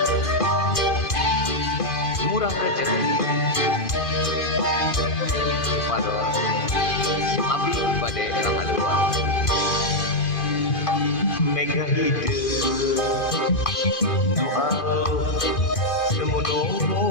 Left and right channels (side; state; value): right; late; 2.5 ms